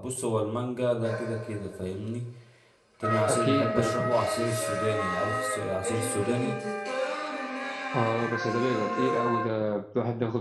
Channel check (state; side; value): identical; both; correlation 1.00